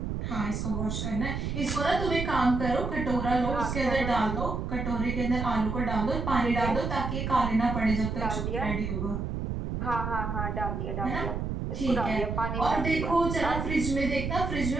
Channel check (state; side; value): noise; right; rumble, 3 dB below the sound